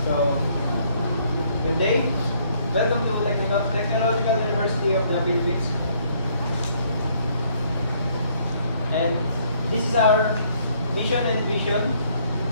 good day. Welcome to Technological University of the Philippines. And this is our mission and vision.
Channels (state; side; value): inverted; both; correlation -0.66